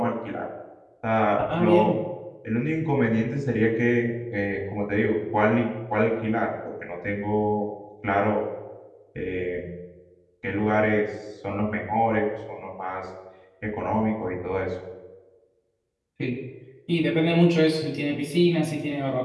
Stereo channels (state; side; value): identical; both; correlation 1.00